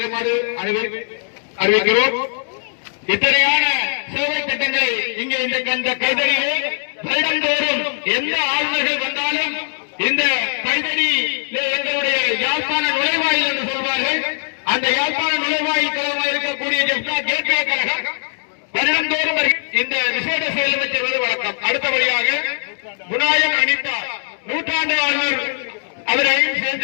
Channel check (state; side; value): silent; right; digital silence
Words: அறிவிக்கிறோம். இத்தனையான சேவை திட்டங்களை இங்கே இந்த கைதடியிலே வருடந்தோறும் எந்த ஆளுநர்கள் வந்தாலும் இந்த கைதடியிலே எங்களுடைய யாழ்ப்பாண நுழைவாயில் என்று சொல்வார்கள். அந்த யாழ்ப்பாண நுழைவாயில் கழகமாக இருக்கக்கூடிய கேட்வே கழகம் வருடந்தோறும் இந்த விசேட செயலும் செய்வது வழக்கம். அடுத்தபடியாக குணாயன் அனிதா நூற்றாண்டு ஆளுநர் அவரையும்